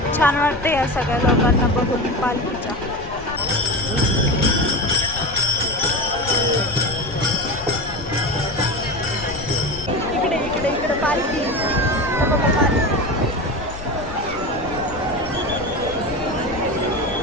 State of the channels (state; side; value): noise; left; rumble, 14 dB below the sound